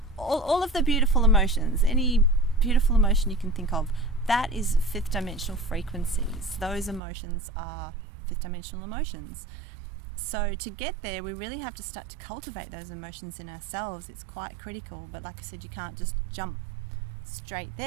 all of the beautiful emotions. Any beautiful emotion you can think of, that is fifth dimensional frequencies. Those emotions are fifth dimensional emotions. So to get there, we really have to start to cultivate those emotions in ourselves. It's quite critical, but like I said, you can't just jump straight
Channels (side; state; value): left; drops out; at 7.0 s